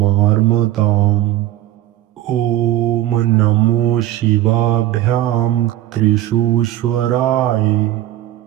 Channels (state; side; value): quieter; left; 14.0 dB